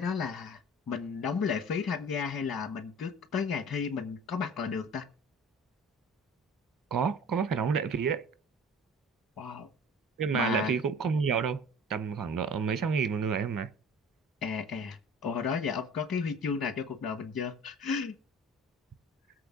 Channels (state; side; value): normal; both; correlation 0.43